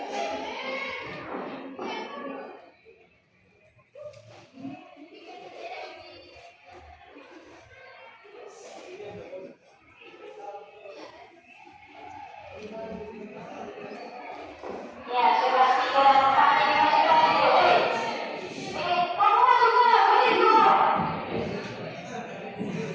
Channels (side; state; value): both; identical; correlation 1.00